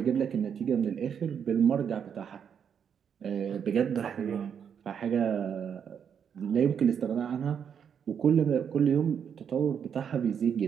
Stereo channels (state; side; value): quieter; left; 7.7 dB